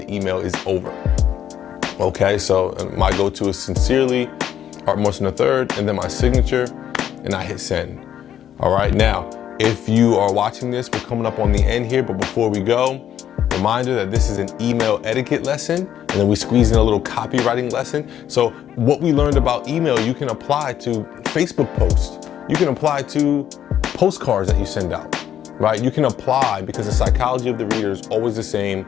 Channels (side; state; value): right; quieter; 10.3 dB